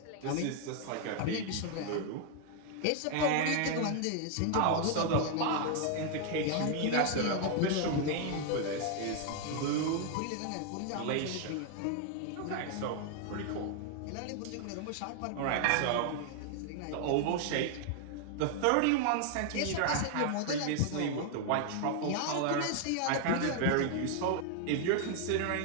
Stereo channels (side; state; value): both; different; correlation 0.00